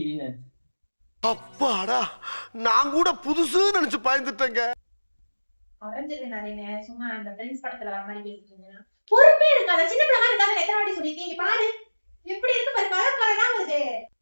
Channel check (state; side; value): inverted; both; correlation -1.00